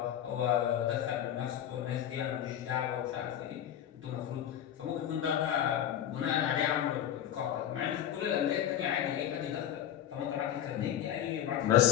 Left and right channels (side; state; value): right; quieter; 10.7 dB